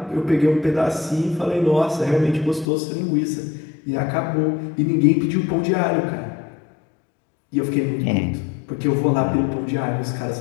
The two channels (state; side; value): drops out; right; at 2.7 s